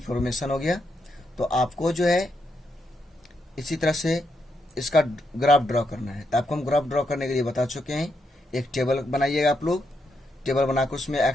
हो गया। तो आपको जो है इसी तरह से इसका ग्राफ ड्रॉ करना है, तो आपको हम ग्राफ ड्रॉ करने के लिए बता चुके हैं एक टेबल बनाइएगा आप लोग। टेबल बनाकर उसमें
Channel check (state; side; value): normal; both; correlation 0.81